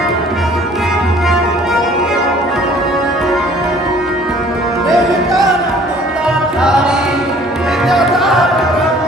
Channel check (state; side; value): normal; both; correlation 0.54